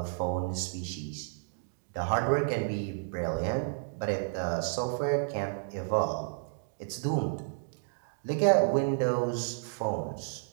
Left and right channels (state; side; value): silent; left; digital silence